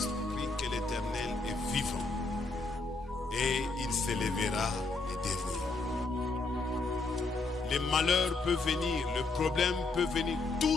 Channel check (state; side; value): quieter; right; 3.6 dB